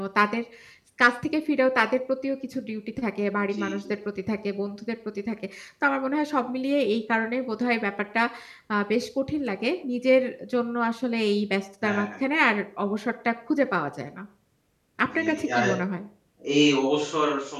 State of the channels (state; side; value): identical; both; correlation 1.00